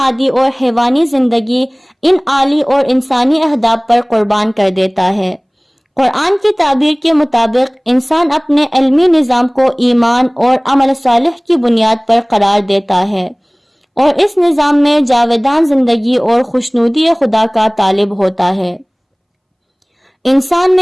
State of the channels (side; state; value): both; identical; correlation 1.00